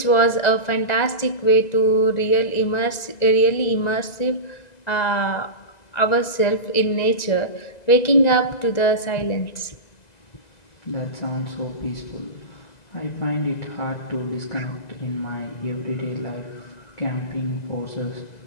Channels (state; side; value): late; right; 2.0 ms